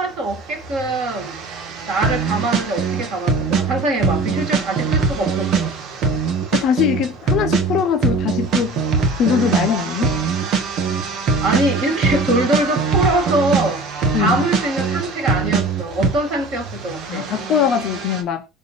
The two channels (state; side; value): normal; both; correlation 0.40